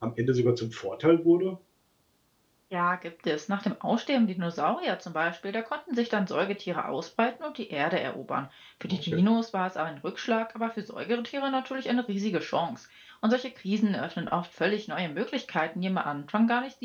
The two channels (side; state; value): both; identical; correlation 1.00